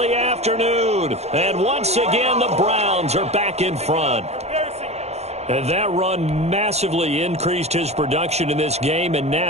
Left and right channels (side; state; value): left; late; 0.31 ms